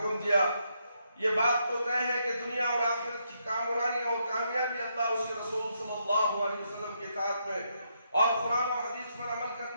دیا۔ یہ بات تو طے ہے کہ دنیا اور آخرت کی کامرانی اور کامیابی اللہ اس کے رسول صلی اللہ علیہ وسلم کی اطاعت میں اور قرآن و حدیث پر عمل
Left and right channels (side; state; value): both; inverted; correlation -0.78